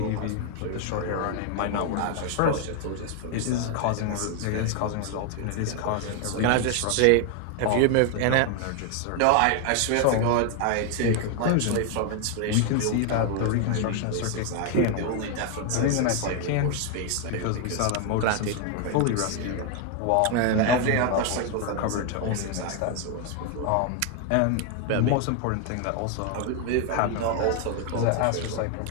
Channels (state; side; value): different; both; correlation 0.01